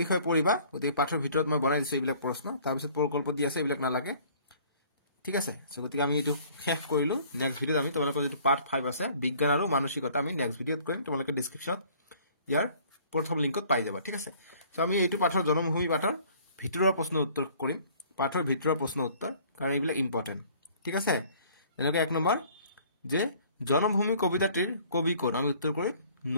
বিষয়ে পঢ়িবা গতিকে পাঠৰ ভিতৰত মই বনাই দিছো এইবিলাক প্ৰশ্ন তাৰ পিছত প্ৰকল্প দি আছে এইবিলাক নালাগে ঠিক আছে সো গতিকে আমি এইটো শেষ কৰিলো নেক্সট ভিডিওত আমি তোমালোকৰ যেটো পাৰ্ট 5 আছে বিজ্ঞান আৰু মানসিকতা আমি নেক্সট ভিডিওত কৰিম তোমালোকে ডেসক্ৰিপচনত ইয়াৰ প্ৰথম লিংকত পাই যাবা ঠিক আছে সো আমি এইটো পাঠৰ জনমভূমি পাঠৰ ভিতৰৰ প্ৰশ্ন উত্তৰ কৰিম পাঠৰ ভিতৰৰ প্ৰশ্ন উত্তৰ কাৰণ এইবিলাক ইম্পৰ্টেন্ট ঠিক আছে এনেকৈ 1 নম্বৰ যে জনমভূমি কবিতাটির কবি কোন আমি উত্তর করি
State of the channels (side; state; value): both; inverted; correlation -0.55